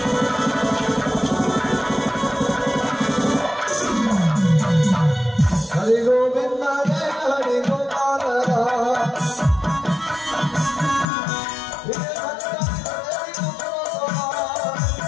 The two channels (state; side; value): drops out; right; at 11.1 s